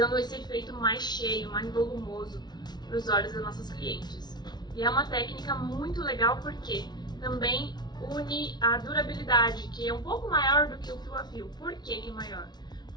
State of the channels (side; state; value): right; late; 0.20 ms